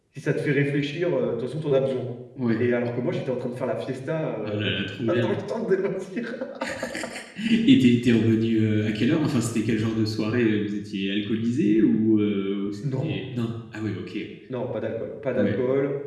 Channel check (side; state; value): both; identical; correlation 1.00